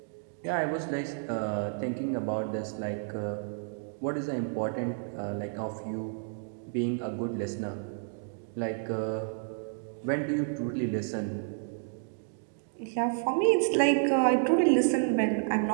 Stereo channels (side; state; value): left; silent; 57 dB below the other